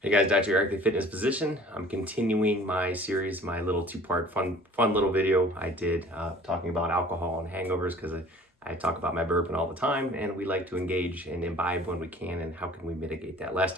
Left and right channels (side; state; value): both; normal; correlation 0.48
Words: guys, Dr. Eric, the Fitness Physician. I'm continuing my series, my little two-part fun little video I did talking about alcohol and hangovers because I talk about my burping all the time and we like to engage and imbibe when we can and how can we mitigate that. Last